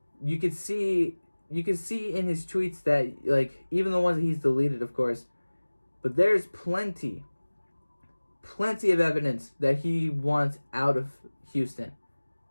you could see in his tweets that, even the ones that he's deleted, of course, but there's plenty of evidence that he wants out of Houston.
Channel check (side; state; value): both; inverted; correlation -1.00